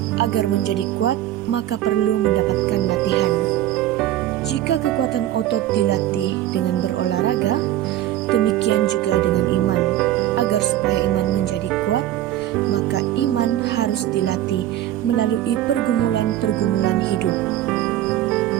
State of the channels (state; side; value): quieter; left; 13.1 dB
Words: Agar menjadi kuat, maka perlu mendapatkan latihan. Jika kekuatan otot dilatih dengan berolahraga, demikian juga dengan iman. Agar supaya iman menjadi kuat, maka iman harus dilatih melalui pergumulan-pergumulan hidup.